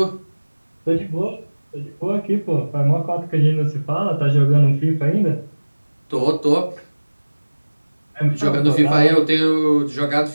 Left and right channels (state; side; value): inverted; both; correlation -1.00